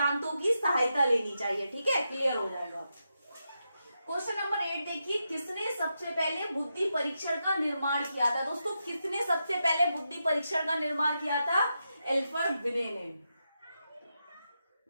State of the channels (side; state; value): both; inverted; correlation -0.86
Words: की सहायता लेनी चाहिए। ठीक है, क्लियर हो जाएगा। क्वेश्चन नंबर 8 देखिए, किसने सबसे पहले बुद्धि परीक्षण का निर्माण किया था। दोस्तों, किसने सबसे पहले बुद्धि परीक्षण का निर्माण किया था। एल्फ्रेड विने ने,